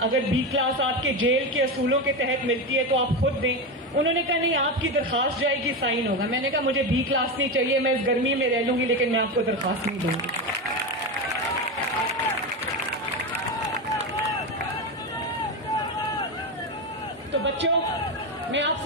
اگر بی کلاس آپ کے جیل کے اصولوں کے تحت ملتی ہے تو آپ خود دیں. انہوں نے کہا نہیں آپ کی درخواست جائے گی, سائن ہوگا. میں نے کہا مجھے بی کلاس نہیں چاہیے, میں اس گرمی میں رہ لوں گی, لیکن میں آپ کو درخواست نہیں دوں گی. تو بچوں, میں آپ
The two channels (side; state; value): both; normal; correlation 0.16